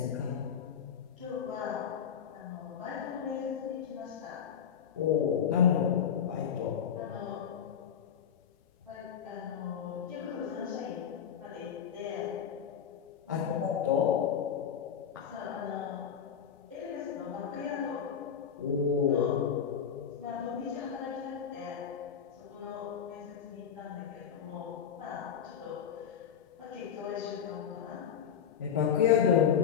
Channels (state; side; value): quieter; right; 8.0 dB